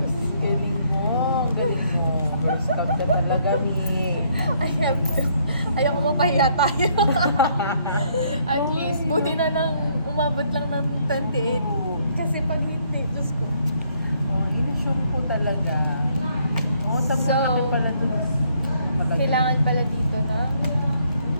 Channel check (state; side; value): inverted; both; correlation -0.68